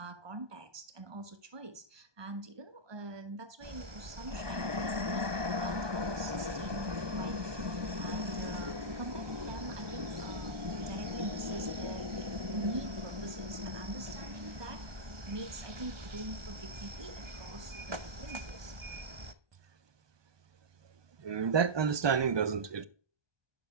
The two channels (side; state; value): left; late; 1.2 ms